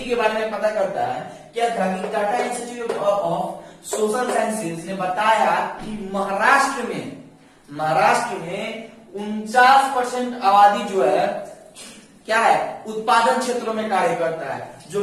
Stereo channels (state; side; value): identical; both; correlation 1.00